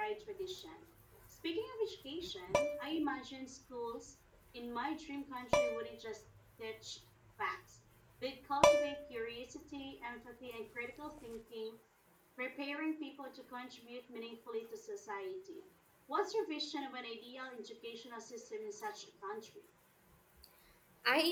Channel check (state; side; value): identical; both; correlation 1.00